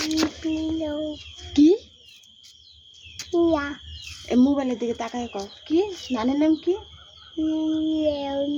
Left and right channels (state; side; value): identical; both; correlation 1.00